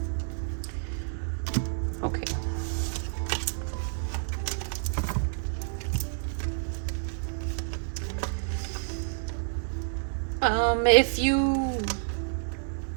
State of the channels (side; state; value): left; silent; 58 dB below the other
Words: Okay. If you